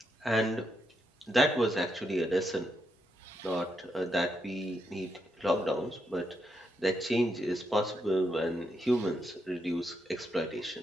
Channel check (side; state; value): both; normal; correlation 0.81